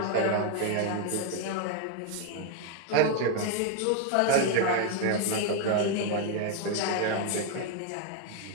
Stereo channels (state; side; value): different; both; correlation 0.01